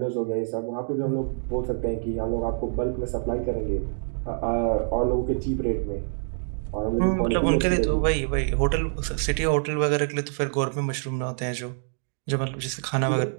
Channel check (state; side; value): silent; left; digital silence